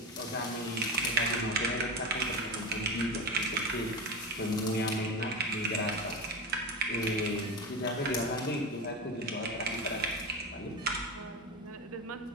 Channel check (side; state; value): both; normal; correlation 0.23